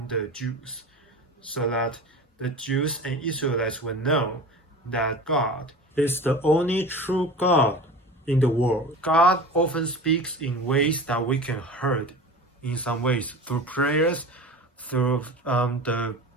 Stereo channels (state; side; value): normal; both; correlation 0.34